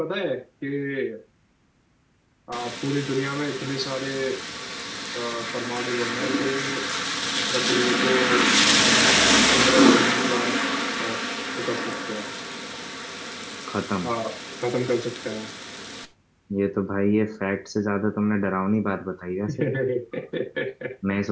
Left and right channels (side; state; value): both; identical; correlation 1.00